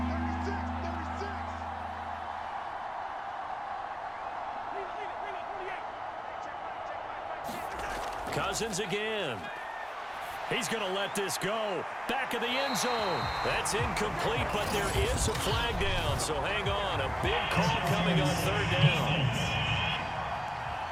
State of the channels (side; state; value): both; identical; correlation 1.00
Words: Cousins again. He's going to let this go. Back of the end zone. That's incomplete, but there is a flag down. So hang on. A big call coming on third down.